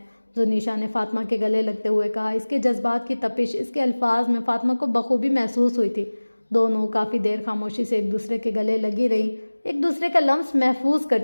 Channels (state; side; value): inverted; both; correlation -1.00